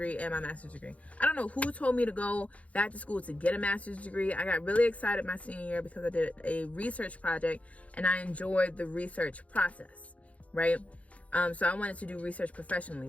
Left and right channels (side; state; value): right; late; 0.066 ms